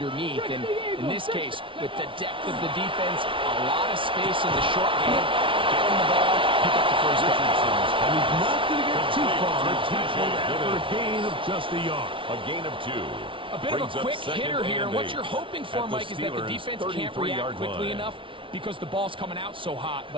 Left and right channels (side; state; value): left; late; 0.25 ms